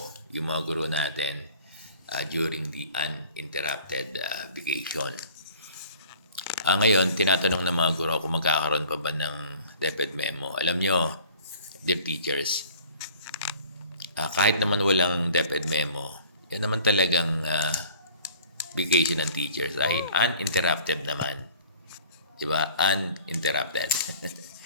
yung mga guro natin during the uninterrupted vacation. Ngayon, tinatanong ng mga guro kung magkakaroon pa ba ng DepEd memo. Alam nyo, dear teachers, kahit naman walang DepEd memo, yan naman talagang vacation ng teachers ay uninterrupted naman. Diba? Uninterrupted.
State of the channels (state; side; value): inverted; both; correlation -0.48